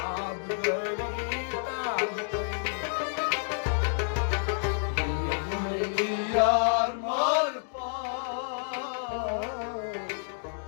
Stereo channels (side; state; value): right; silent; digital silence